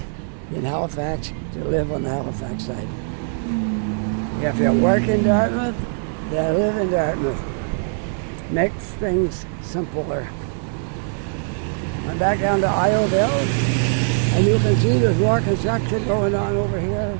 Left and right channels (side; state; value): left; silent; digital silence